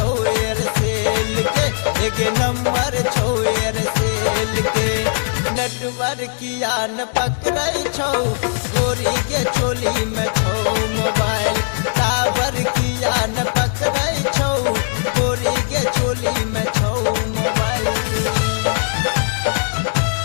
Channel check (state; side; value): silent; right; digital silence